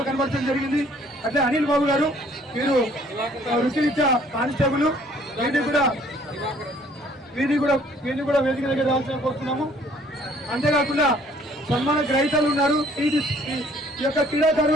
కనబడటం జరిగింది. అట్లే అనిల్ బాబు గారు వీరు వృత్తిరీత్యా కానిస్టేబుల్ వీరిని కూడా వేదిక దగ్గర రావాల్సిన కోరుతున్నాము. అంతేకాకుండా సన్మాన గ్రహీతలు ఉన్నారు. ఈ యొక్క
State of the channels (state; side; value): normal; both; correlation 0.59